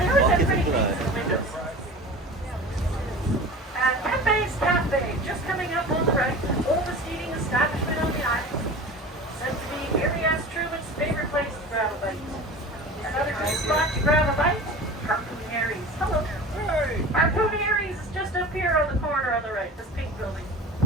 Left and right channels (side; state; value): both; normal; correlation 0.35